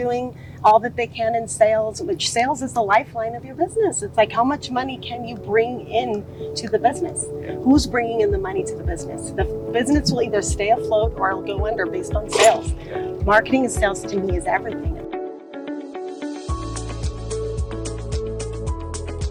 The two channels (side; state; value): both; identical; correlation 1.00